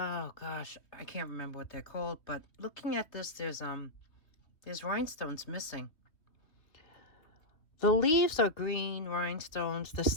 gosh, I can't remember what they're called. But looking at this, there's rhinestones missing. The leaves are green rhinestones. The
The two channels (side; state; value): right; late; 3.0 ms